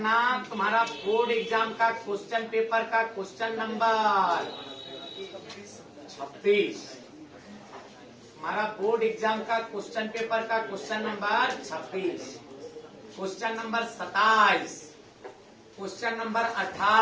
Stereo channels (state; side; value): identical; both; correlation 1.00